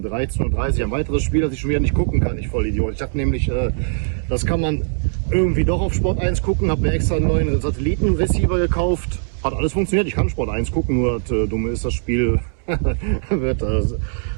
13:30 Uhr ein weiteres Spiel, das ich schon wieder nicht gucken kann. Ich Vollidiot. Ich dachte nämlich, das kann man irgendwie doch auf Sport 1 gucken, habe mir extra einen neuen Satellitenreceiver gekauft. Hat alles funktioniert, ich kann Sport 1 gucken, nur das Dumme ist, das Spiel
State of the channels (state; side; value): silent; left; 66 dB below the other